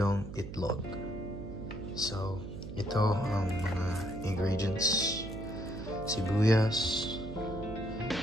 itlog. So, ito ang mga ingredients: sibuyas,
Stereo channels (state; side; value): noise; right; hum, 9 dB below the sound